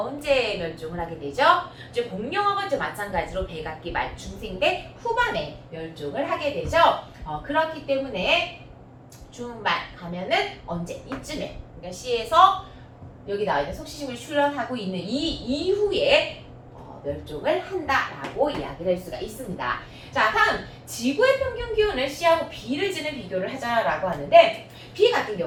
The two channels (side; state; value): both; identical; correlation 1.00